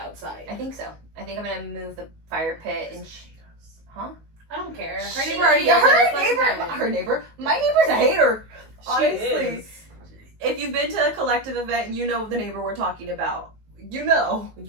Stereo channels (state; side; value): late; left; 19 ms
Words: I think so. I think I'm gonna move the fire pit and huh? I don't care. Her She- neighbor already does it. Let's let Her neighbor, my neighbor's a hater. She Honestly. is. If you've been to a collective event, you know the neighbor we're talking about. You know.